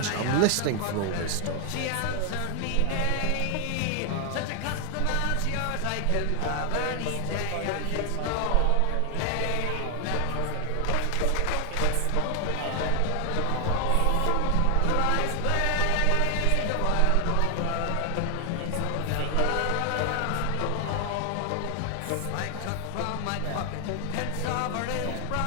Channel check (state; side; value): different; both; correlation 0.00